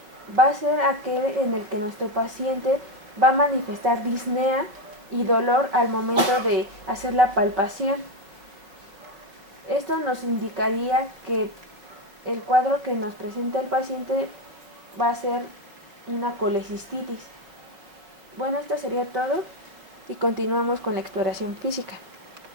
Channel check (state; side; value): late; left; 5.1 ms